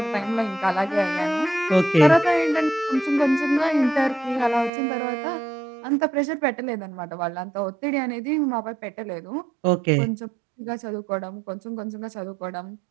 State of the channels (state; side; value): drops out; left; at 4.7 s